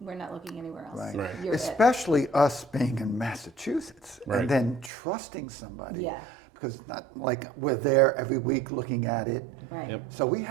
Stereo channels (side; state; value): left; drops out; at 4.9 s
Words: we're not looking anywhere else. Right. Right. You're it. Especially us being in Massachusetts Right. and then trusting somebody. Yeah. Because it's not like we're there every week looking at it. Right. Yep. So we